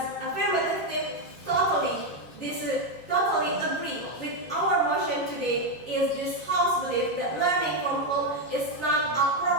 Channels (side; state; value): both; normal; correlation 0.05